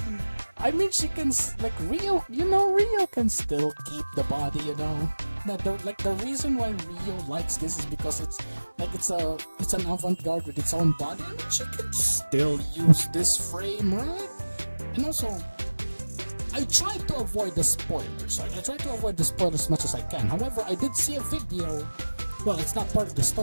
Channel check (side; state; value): both; inverted; correlation -1.00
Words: I mean, she can, like, Rio can still keep the body, you know. The reason why Rio likes this is because it's an avant-garde with its own body. I mean, she can still use this frame, right? And also, I try to avoid the spoilers. Right? I try to avoid the spoilers as much as I can. However, I did see a video. Well, it's not part of the